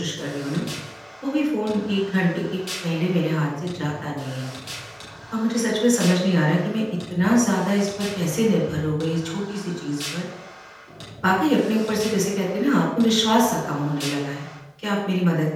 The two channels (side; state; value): both; identical; correlation 1.00